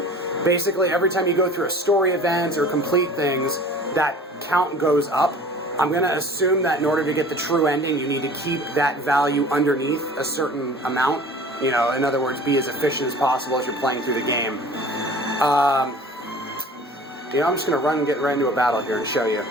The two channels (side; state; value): both; normal; correlation 0.45